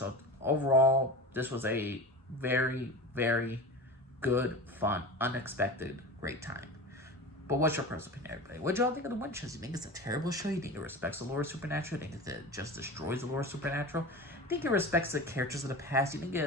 overall, this was a very, very good, fun, unexpected, great time. But what's your personal opinion, everybody? What y'all think of The Winchesters? You think it's a terrible show? You think it respects the lore of Supernatural? You think it just destroys the lore of Supernatural? You think it respects the characters of the past? You think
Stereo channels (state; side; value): normal; both; correlation 0.31